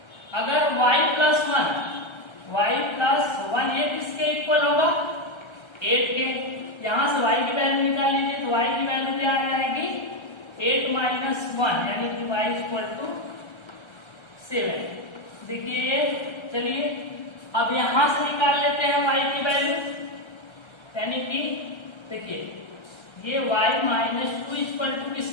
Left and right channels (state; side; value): late; right; 1.3 ms